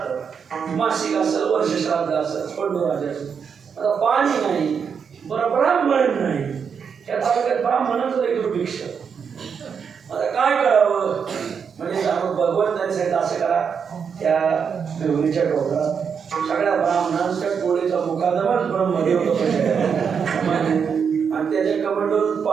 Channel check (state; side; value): quieter; left; 6.6 dB